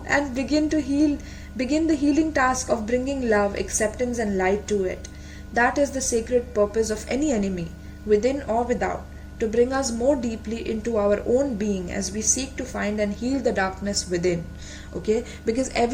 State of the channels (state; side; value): identical; both; correlation 1.00